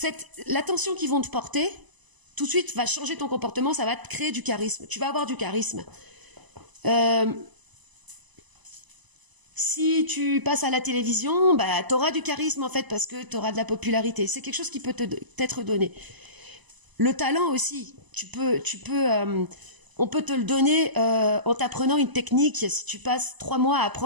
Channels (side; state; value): left; late; 1.0 ms